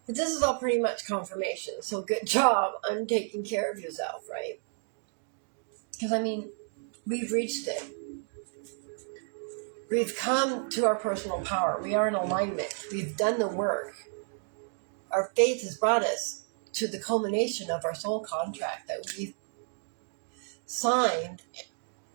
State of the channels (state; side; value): silent; left; 57 dB below the other